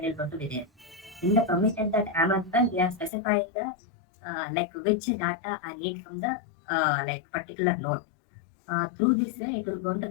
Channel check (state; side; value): drops out; right; at 3.1 s